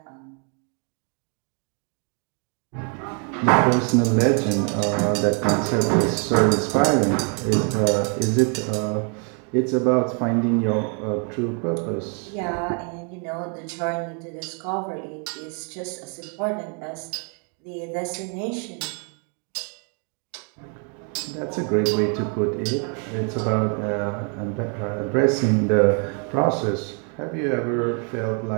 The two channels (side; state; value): left; quieter; 39.5 dB